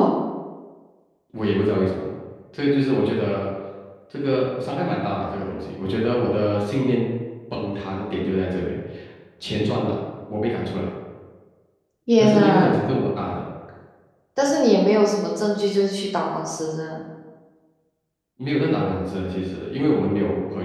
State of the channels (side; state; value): both; identical; correlation 1.00